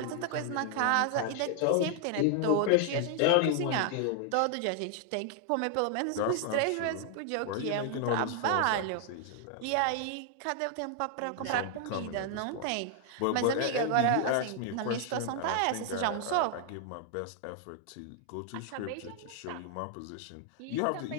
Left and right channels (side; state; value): both; different; correlation 0.00